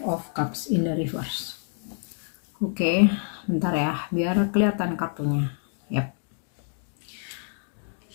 of Cups in the reverse. Oke, bentar ya, biar kelihatan kartunya. Yap.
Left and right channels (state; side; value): silent; right; 60 dB below the other